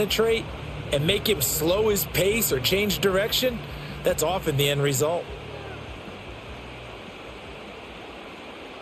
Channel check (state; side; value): identical; both; correlation 1.00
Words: and make him slow his pace or change direction, that's often the end result.